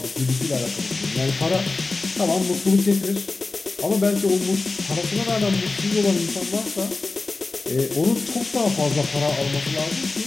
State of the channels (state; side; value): quieter; right; 3.6 dB